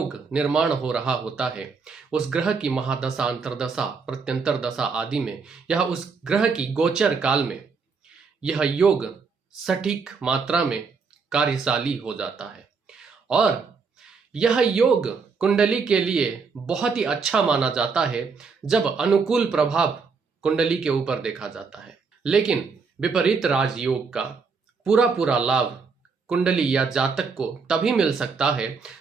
निर्माण हो रहा होता है, उस ग्रह की महादशा, अंतरदशा, प्रत्यंतर दशा आदि में यह उस ग्रह की गोचर काल में यह योग सटीक मात्रा में कार्यशाली हो जाता है। और यह योग कुंडली के लिए बहुत ही अच्छा माना जाता है जब अनुकूल प्रभाव कुंडली के ऊपर देखा जाता है। लेकिन विपरीत राजयोग का पूरा लाभ कुंडली या जातक को तभी मिल सकता है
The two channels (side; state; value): left; quieter; 5.0 dB